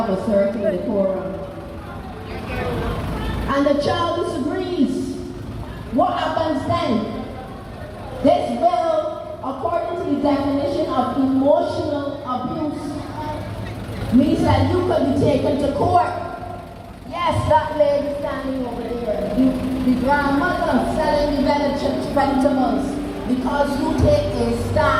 a certain decorum. And the child disagrees. What happens then? This bill, according to the definition of emotional abuse, means that you could be taken to court. Yes, that lady standing over there, the grandmother selling the vegetables, because you take a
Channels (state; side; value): identical; both; correlation 1.00